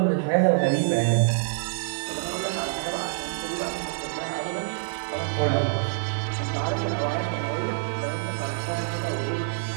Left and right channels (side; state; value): left; silent; digital silence